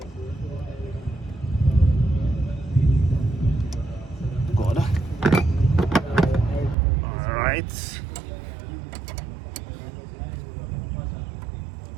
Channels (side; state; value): left; drops out; at 6.8 s